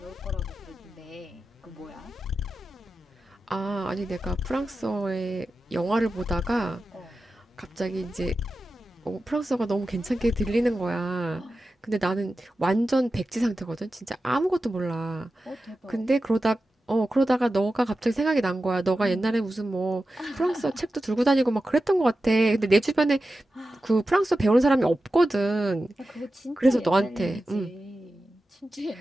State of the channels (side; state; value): both; normal; correlation 0.93